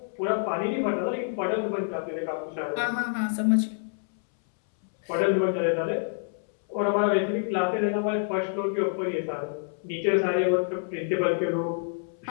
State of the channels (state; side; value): silent; right; 60 dB below the other